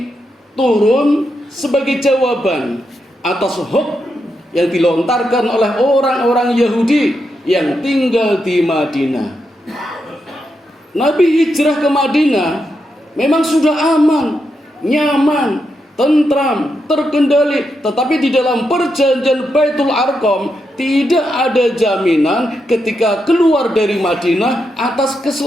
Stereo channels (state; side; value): normal; both; correlation 0.84